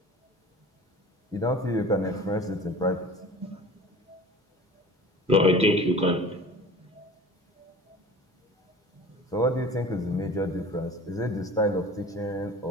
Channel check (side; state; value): both; normal; correlation 0.42